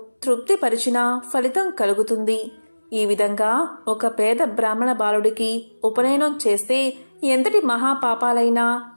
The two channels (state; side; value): inverted; both; correlation -1.00